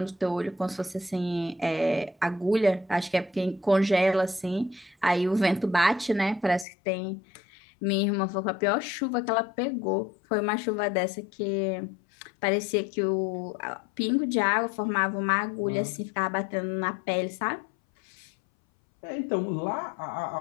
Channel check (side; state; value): right; drops out; at 6.7 s